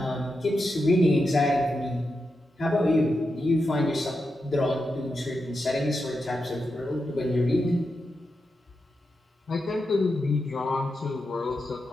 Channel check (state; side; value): normal; both; correlation 0.88